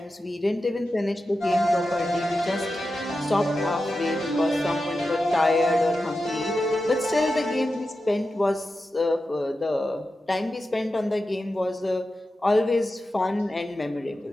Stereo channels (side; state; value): both; normal; correlation 0.91